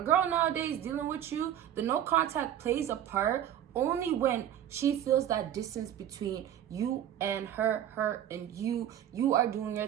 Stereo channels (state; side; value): quieter; left; 10.8 dB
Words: girl nowadays dealing with you, the no contact plays a part only when she feels that distance between you and her and you. You are doing your